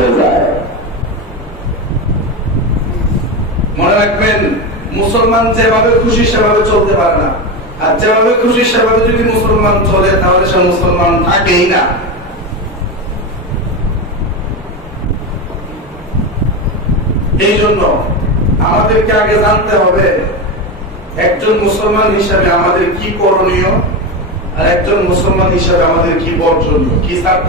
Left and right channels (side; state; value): both; normal; correlation 0.17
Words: যায়। মনে রাখবেন, মুসলমান যেভাবে খুশি সেভাবে চলতে পারে না, আর যেভাবে খুশি সেভাবে যদি মুসলমান চলে তাহলে সে মুসলমান থাকেই না। এই জন্য আমাদেরকে আগে জানতে হবে একজন মুসলমান হিসাবে আমাদের কি করণীয়, আর একজন মুসলমান হিসাবে আমাদের কি বর্জনীয়, কি